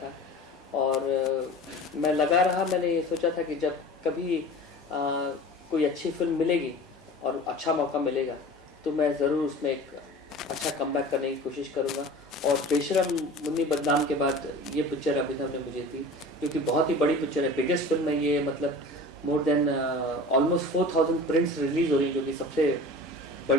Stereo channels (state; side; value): normal; both; correlation 0.38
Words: और मैं लगा रहा, मैंने ये सोचा था कि जब कभी कोई अच्छी फिल्म मिलेगी और अच्छा मौका मिलेगा तो मैं ज़रूर उसमें एक अच्छा कमबैक करने की कोशिश करूँगा। और बेशरम मुन्नी बदनाम के बाद ये पिक्चर अभिनव ने मुझे दी, क्योंकि बहुत ही बड़ी पिक्चर है, बिगेस्ट फिल्म है ये। मतलब more than almost 4000 prints release हो रही है, जो कि सबसे